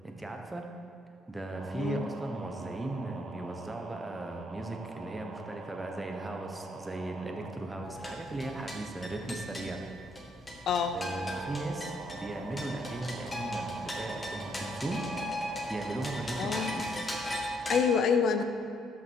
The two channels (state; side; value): normal; both; correlation 0.71